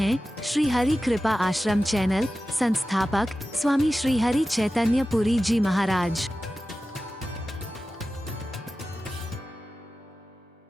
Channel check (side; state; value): both; normal; correlation 0.94